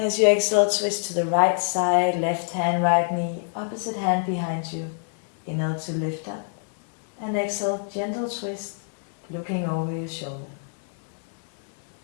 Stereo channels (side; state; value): right; silent; 61 dB below the other